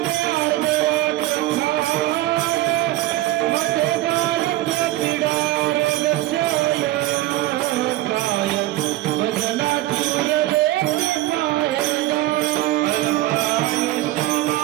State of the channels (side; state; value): left; quieter; 16.0 dB